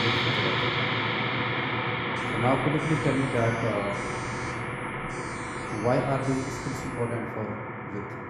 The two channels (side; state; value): both; identical; correlation 1.00